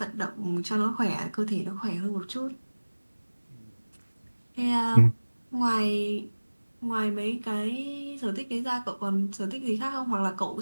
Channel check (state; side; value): inverted; both; correlation -1.00